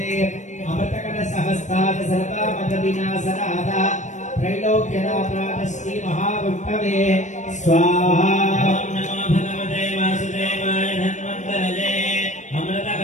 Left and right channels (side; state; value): right; late; 0.35 ms